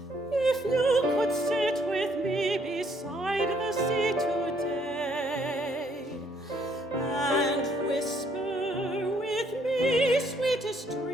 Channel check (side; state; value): both; normal; correlation 0.67